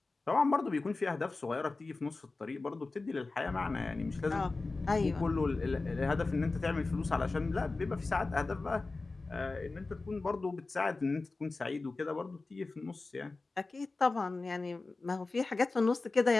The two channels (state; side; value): quieter; right; 3.6 dB